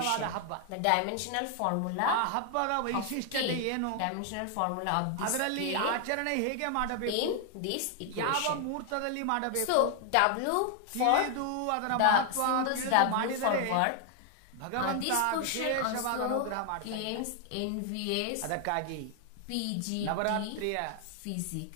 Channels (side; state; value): both; different; correlation 0.00